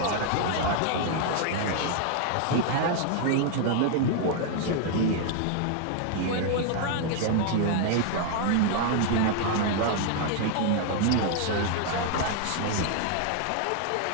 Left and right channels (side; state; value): both; different; correlation 0.00